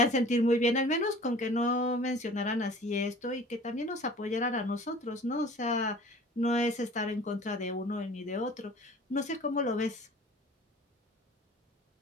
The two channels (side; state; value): both; normal; correlation 0.45